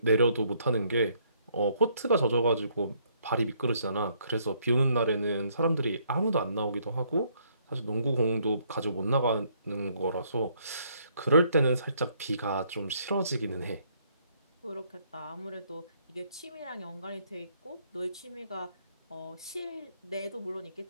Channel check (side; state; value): both; inverted; correlation -0.68